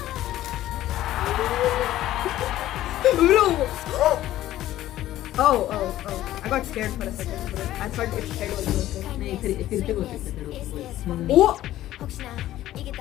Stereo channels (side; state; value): right; quieter; 14.1 dB